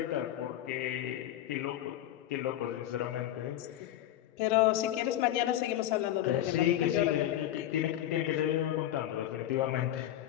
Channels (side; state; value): right; quieter; 12.8 dB